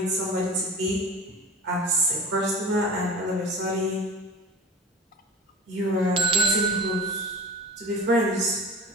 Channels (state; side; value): normal; both; correlation 0.37